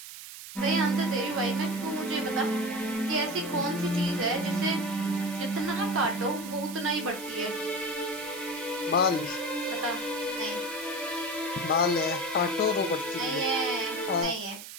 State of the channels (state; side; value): noise; right; hiss, 12 dB below the sound